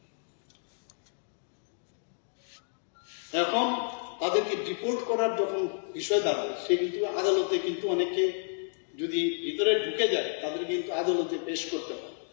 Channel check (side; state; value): right; silent; digital silence